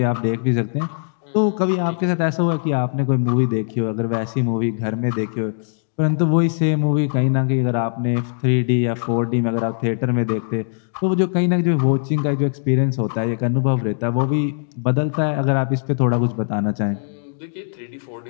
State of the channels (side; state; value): right; silent; digital silence